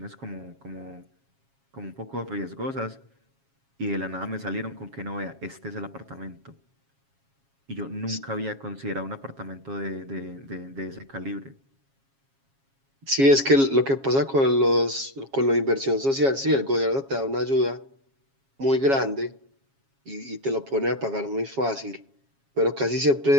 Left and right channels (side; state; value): left; late; 7.3 ms